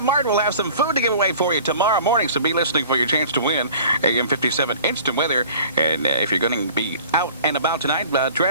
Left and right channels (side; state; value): both; inverted; correlation -0.46